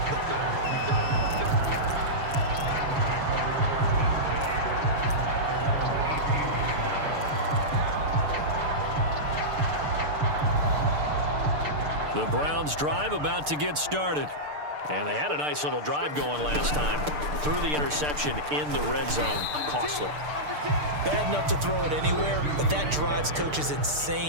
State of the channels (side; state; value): left; late; 6.7 ms